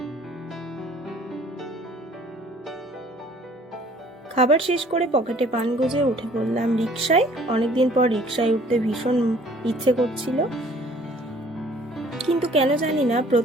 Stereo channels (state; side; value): normal; both; correlation 0.55